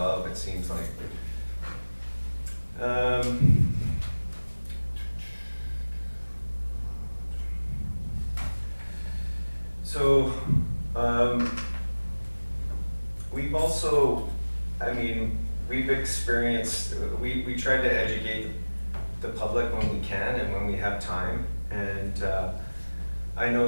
it seems like. So we've also, we've experienced, we try to educate the public when we can and when we have time. And I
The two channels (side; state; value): both; inverted; correlation -1.00